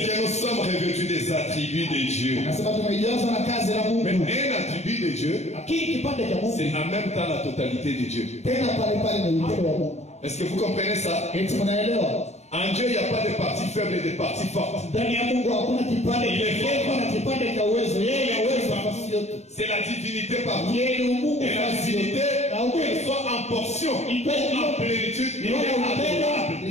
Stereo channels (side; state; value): right; late; 0.32 ms